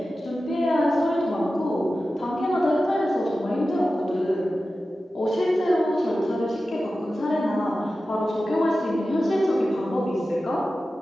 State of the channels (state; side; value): normal; both; correlation 0.94